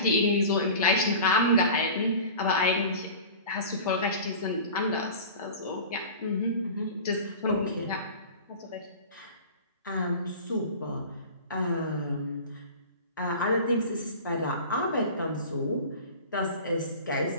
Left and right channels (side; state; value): both; inverted; correlation -0.37